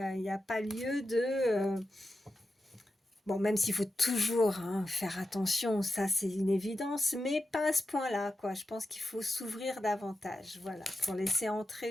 n'y a pas lieu de... Bon, même s'il faut toujours hein, faire attention, ça c'est une évidence, mais pas à ce point-là, quoi. Je pense qu'il faut s'ouvrir davantage, voilà, pour laisser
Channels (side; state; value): both; normal; correlation 0.90